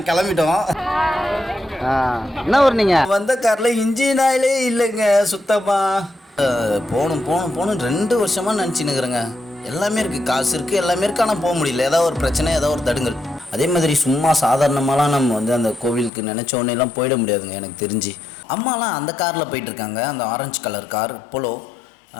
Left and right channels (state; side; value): drops out; right; at 16.1 s